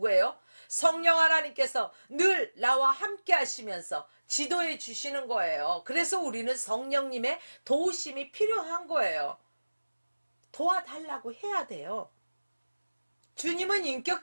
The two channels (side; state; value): both; inverted; correlation -1.00